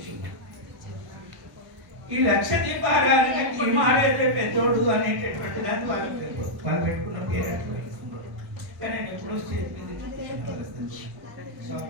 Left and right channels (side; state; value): left; late; 1.1 ms